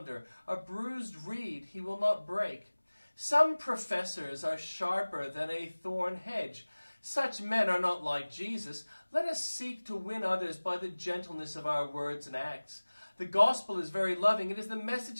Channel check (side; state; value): both; inverted; correlation -1.00